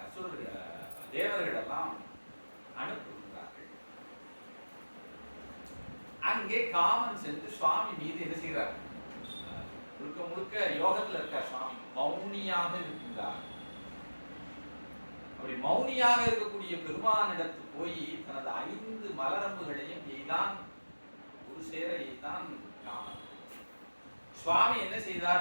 அசுரர்கள் தேவர்கள் எல்லாம் அனுப்புகிறார்கள். அங்கே காமன் சென்று சுவாமி மீது என்ன செய்கிறார், முழுக்க முழுக்க யோகத்தில் இருக்கார் சுவாமி, மௌனியாக இருக்கின்றார். அப்படி மௌனியாக இருக்கக்கூடிய பெருமானிடத்து போய் தனது 5 மலரம்புகளையும் எய்தான், ஒரு சேர எய்தான் காமன். சுவாமி என்ன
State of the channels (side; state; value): both; inverted; correlation -1.00